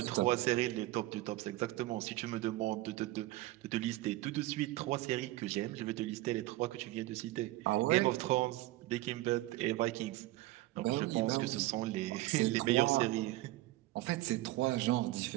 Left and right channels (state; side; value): quieter; left; 17.4 dB